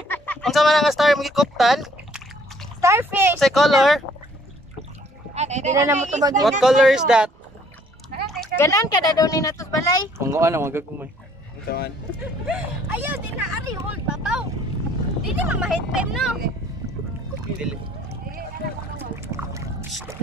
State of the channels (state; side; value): normal; both; correlation 0.61